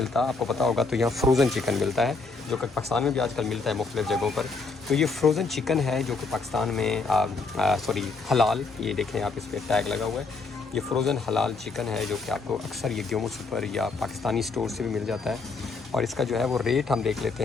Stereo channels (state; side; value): quieter; right; 4.1 dB